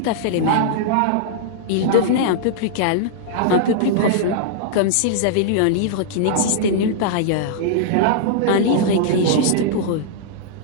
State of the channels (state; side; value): different; both; correlation -0.01